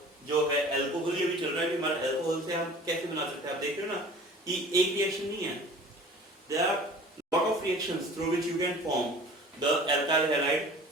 जो है अल्कोहल, ये भी चल रहा है कि हमारा अल्कोहल से हम कैसे बना सकते हैं। आप देख रहे हो ना कि एक रिएक्शन नहीं है, there are lot of reactions through which you can form the alkyl halide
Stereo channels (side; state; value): both; normal; correlation 0.44